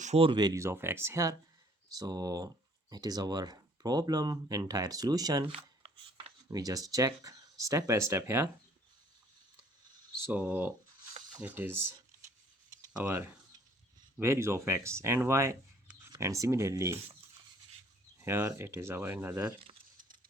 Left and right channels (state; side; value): normal; both; correlation 0.59